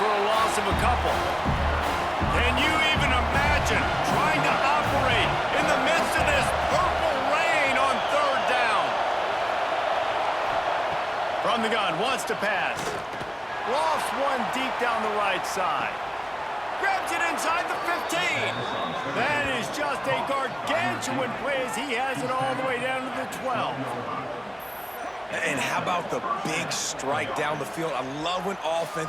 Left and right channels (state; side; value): identical; both; correlation 1.00